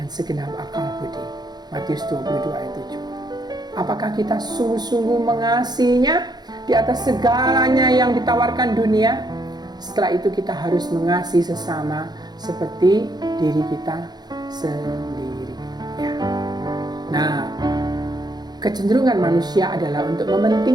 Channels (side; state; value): left; late; 0.20 ms